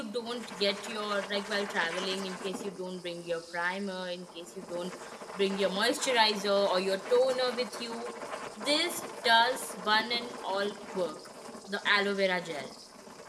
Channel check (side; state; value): both; identical; correlation 1.00